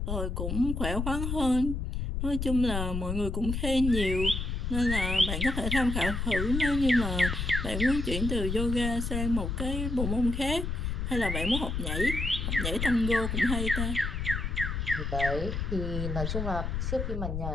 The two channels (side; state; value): left; noise; rumble, 2 dB below the sound